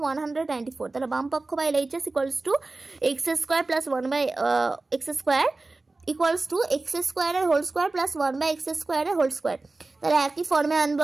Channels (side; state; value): left; quieter; 3.3 dB